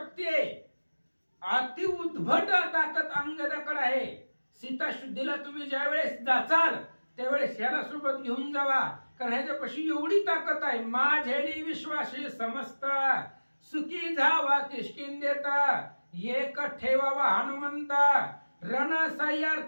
आहे, अति उद्भट ताकद अंगदाकडे आहे. सीता शुद्धीला तुम्ही ज्यावेळेस जाचाल त्यावेळेस ह्याला सोबत घेऊन जावा, कारण ह्याच्यापाशी एवढी ताकद आहे. माझ्यानी विश्वासी समस्त, सुखी जावा किष्किंधेता, एक ठेवावा हनुमंता, रण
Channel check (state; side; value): inverted; both; correlation -1.00